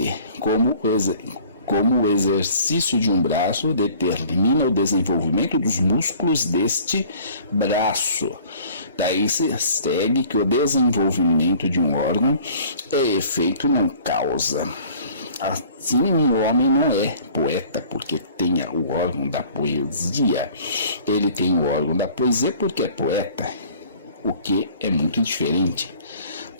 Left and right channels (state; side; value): inverted; both; correlation -0.51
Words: como o exercício de um braço determina o desenvolvimento dos músculos deste braço. Daí se segue que o desenvolvimento de um órgão é efeito não causa. Assim, o homem não é poeta porque tenha o órgão da poesia. Ele tem o órgão da poesia porque é poeta, o que é muito diferente.